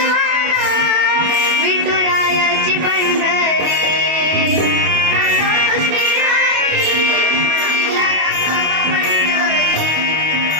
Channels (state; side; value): late; left; 25 ms